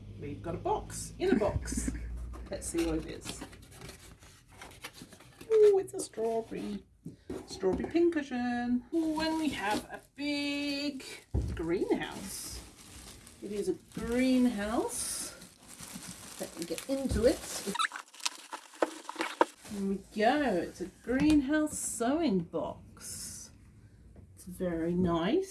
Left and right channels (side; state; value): both; identical; correlation 1.00